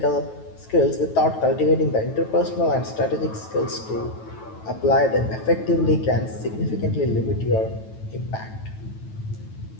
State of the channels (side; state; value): right; late; 9.2 ms